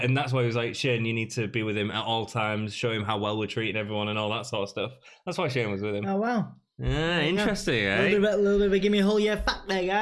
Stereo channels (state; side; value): identical; both; correlation 1.00